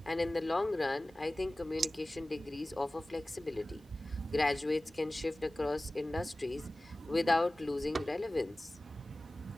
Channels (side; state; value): both; normal; correlation 0.97